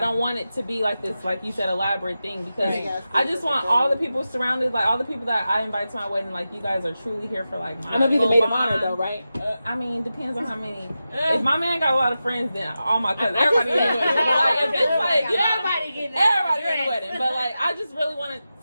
want it to be like this, like you said, elaborate thing, because Right. I just want all the people surrounded, like all the people that I invite to my wedding, like you guys are truly here for like my I'm gonna be the full maid of bond. honor though, right? I mean, depends on how many. If my man got a lot of friends, then all my cousins, everybody in the wedding. But like if it's like, you know, everybody in the wedding. But like I just really wanted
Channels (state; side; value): inverted; both; correlation -0.92